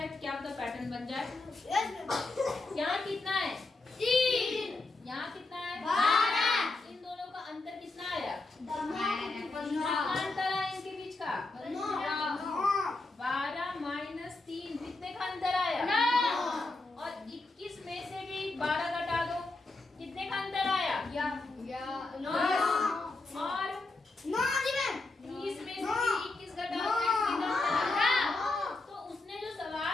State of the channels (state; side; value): quieter; right; 3.3 dB